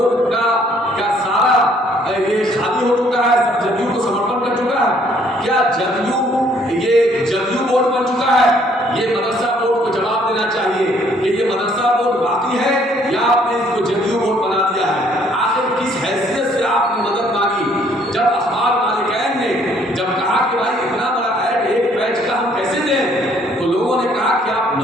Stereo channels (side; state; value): both; normal; correlation 0.63